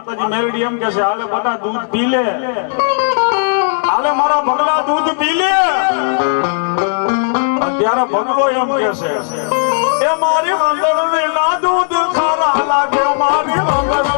મેલડી એમ કે છે, હાલે બધા દૂધ પી લે, હાલે મારા ભગલા દૂધ પી લે. ત્યારે ભગલો એમ કે છે, એ મારી વંદન ના દૂધ ખારા લાગે, મારી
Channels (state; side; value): silent; right; digital silence